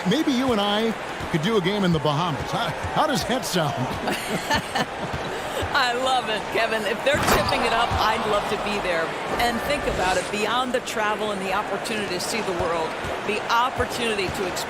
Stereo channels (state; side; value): identical; both; correlation 1.00